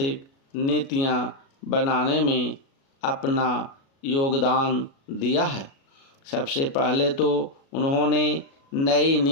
नीतियां बनाने में अपना योगदान दिया है। सबसे पहले तो उन्होंने नई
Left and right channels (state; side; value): late; right; 36 ms